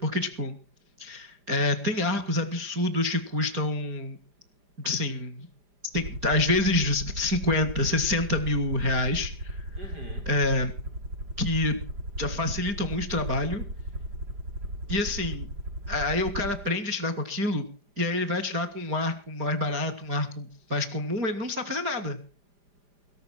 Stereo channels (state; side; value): late; left; 5.0 ms